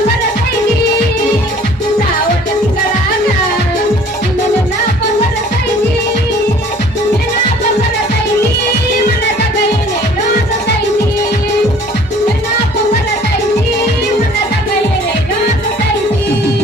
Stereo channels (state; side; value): normal; both; correlation 0.52